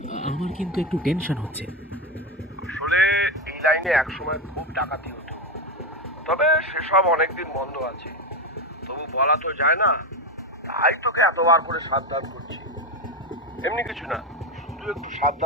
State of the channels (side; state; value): both; normal; correlation 0.14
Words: আমার কিন্তু একটু টেনশন হচ্ছে। আসলে এই লাইনে একসময় খুব ডাকাতি হতো, তবে সেসব অনেকদিন বন্ধ আছে। তবু বলা তো যায় না, তাই তোকে এতবার করে সাবধান করছি। এমনি কিছু না, শুধু একটু